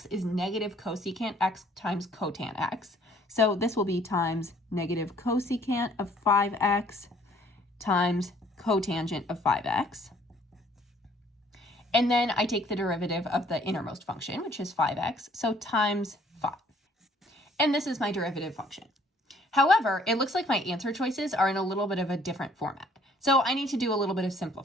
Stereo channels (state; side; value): normal; both; correlation 0.60